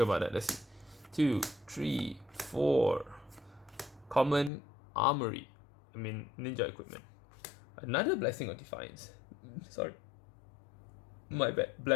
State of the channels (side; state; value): right; drops out; at 4.5 s